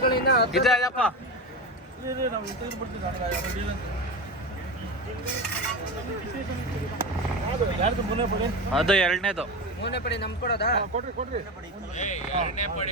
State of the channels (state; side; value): normal; both; correlation 0.22